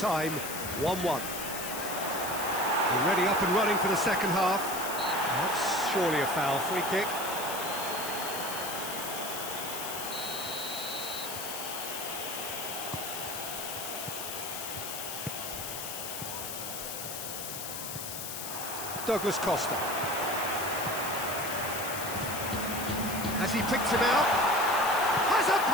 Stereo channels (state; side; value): noise; left; hiss, 6 dB below the sound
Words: 1-1. Already up and running for the second half. That's surely a foul. Free kick. Douglas Costa. Has he picked him out? Has a